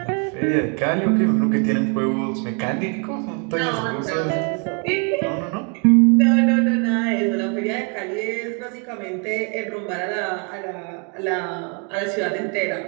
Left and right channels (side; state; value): left; quieter; 37.3 dB